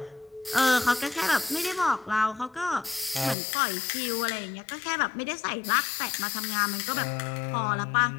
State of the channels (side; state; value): right; drops out; at 3.4 s